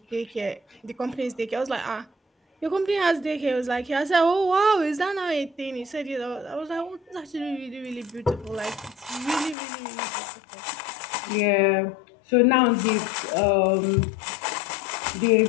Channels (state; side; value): drops out; right; at 9.6 s